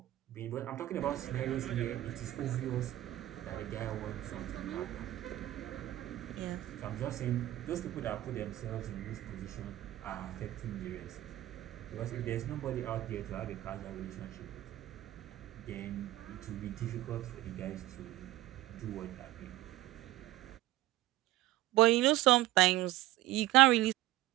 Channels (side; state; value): left; quieter; 15.7 dB